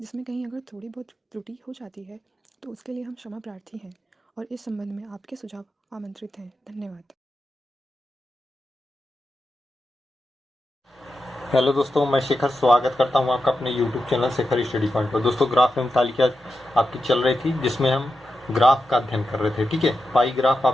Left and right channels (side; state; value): both; normal; correlation 0.89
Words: जिसमें कहीं अगर थोड़ी बहुत त्रुटि हो जाती है तो उसके लिए हम क्षमा प्रार्थी हैं और इस संबंध में आपके सुझाव आमंत्रित हैं। धन्यवाद। हेलो दोस्तों, मैं शेखर स्वागत करता हूं आपका अपने YouTube channel Shekhar study point पर। दोस्तों, ग्राफ एवं तालिका आपकी चल रही थी जिसमें हम ग्राफ का अध्ययन कर रहे थे। ठीक है, पाई ग्राफ